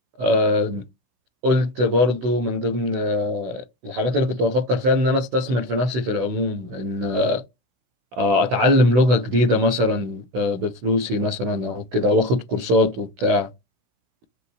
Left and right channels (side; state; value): left; late; 16 ms